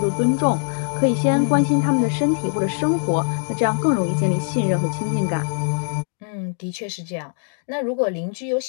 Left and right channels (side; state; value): right; silent; digital silence